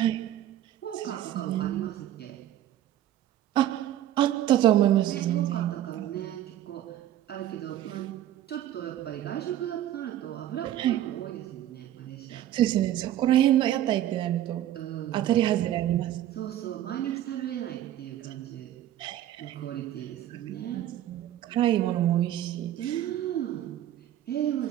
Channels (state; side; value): quieter; left; 12.3 dB